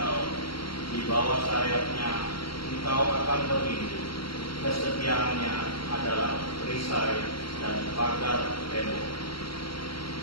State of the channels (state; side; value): late; right; 0.74 ms